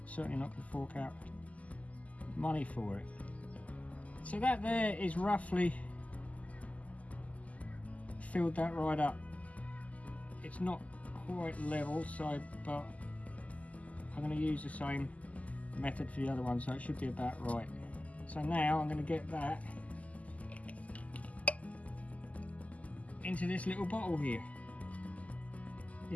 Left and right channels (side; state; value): right; late; 0.072 ms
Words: certainly not going to fork out money for it. So that there is roughly filled that right up. It's not quite level, so but I'm going to use the same method for the other one, so it should be about right. So now I'm going to get that into this little bottle here.